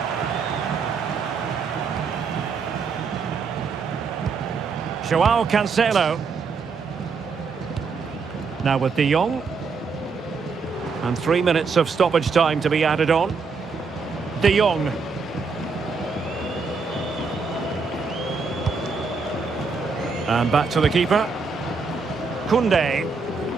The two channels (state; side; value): quieter; left; 4.9 dB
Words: Joao Cancelo. Now with de Jong. And 3 minutes of stoppage time to be added on. De Jong. And back to the keeper. Koundé.